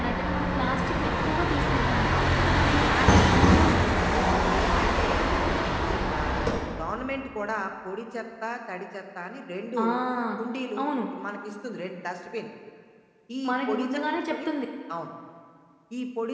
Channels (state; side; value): identical; both; correlation 1.00